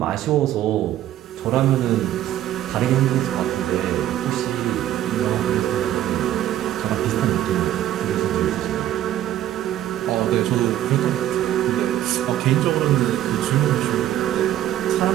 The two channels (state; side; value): quieter; left; 12.5 dB